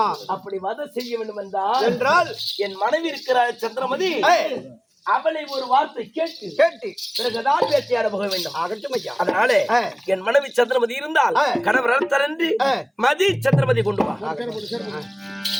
அப்படி வதம் செய்ய வேண்டும் என்றால் என் மனைவி இருக்கிறார் சந்திரமதி, அவளை ஒரு வார்த்தை கேட்டு பிறகுதான் வேட்டையாட போக வேண்டும். அதனால என் மனைவி சந்திரமதி இருந்தால் கணவர் தரண்டு மதி சந்திரமதி கொண்டு வா.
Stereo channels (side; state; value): both; identical; correlation 1.00